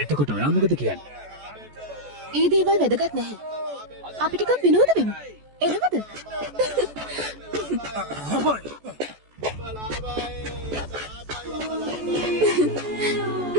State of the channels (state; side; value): late; left; 14 ms